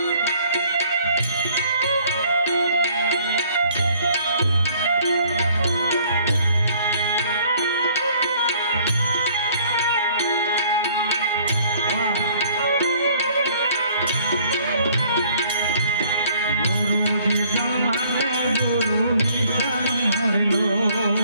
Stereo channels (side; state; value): both; inverted; correlation -0.58